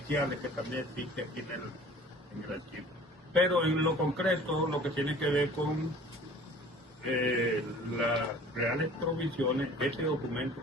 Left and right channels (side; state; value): both; normal; correlation 0.47